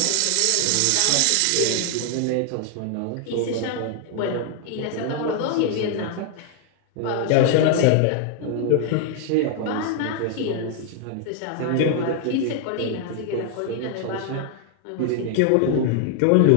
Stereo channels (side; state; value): both; different; correlation 0.00